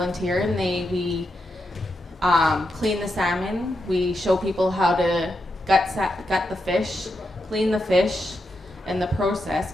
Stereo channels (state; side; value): normal; both; correlation 0.85